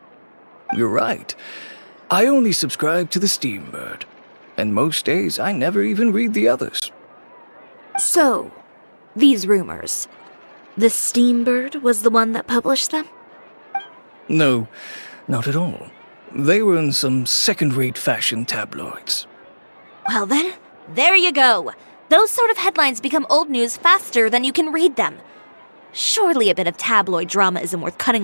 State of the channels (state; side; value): inverted; both; correlation -1.00